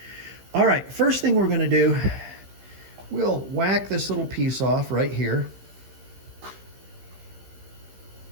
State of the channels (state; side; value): late; left; 15 ms